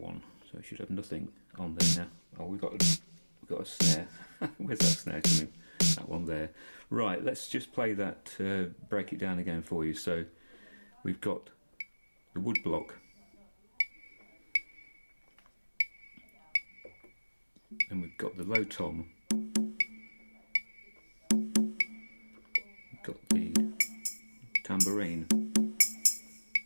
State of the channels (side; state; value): both; inverted; correlation -1.00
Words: So we should have nothing on there now. Oh, we've got a snare. Where's that snare coming? That one there. Right, let's just play that, break it down again for you. So we've got the wood block, and we've got the low tom, we've got the tambourine,